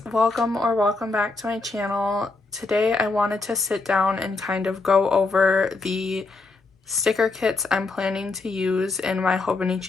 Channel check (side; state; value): right; quieter; 3.6 dB